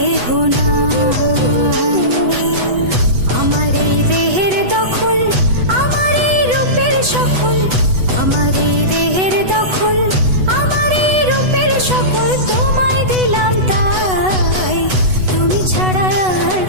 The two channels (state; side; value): late; left; 8.0 ms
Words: নাই। আমার এই দেহের দখল, আমার এই রূপের সকল, আমার এই দেহের দখল, আমার এই রূপের সকল তোমায় দিলাম তাই, তুমি ছাড়া আর